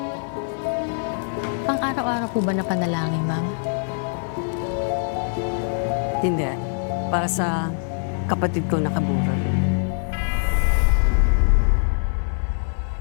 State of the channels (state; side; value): silent; right; 58 dB below the other